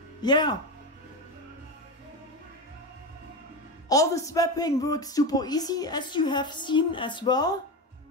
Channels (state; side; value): normal; both; correlation 0.17